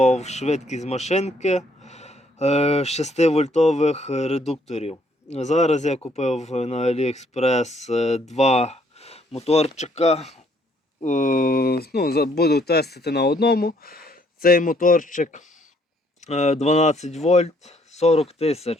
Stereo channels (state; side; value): normal; both; correlation 0.67